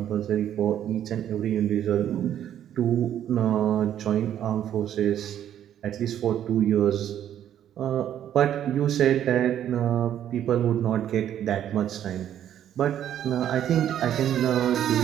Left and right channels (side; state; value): left; quieter; 10.6 dB